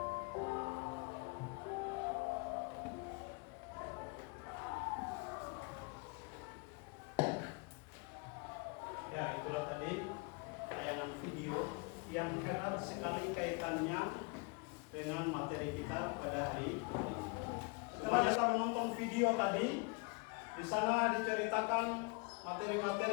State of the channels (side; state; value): right; quieter; 31.4 dB